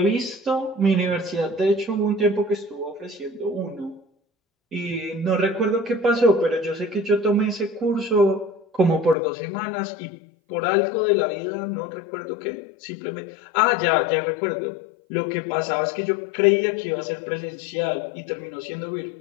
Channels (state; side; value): drops out; right; at 9.2 s